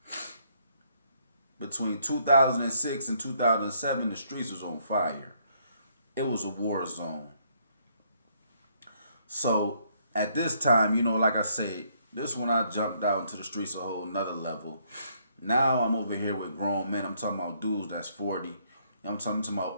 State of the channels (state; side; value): inverted; both; correlation -0.69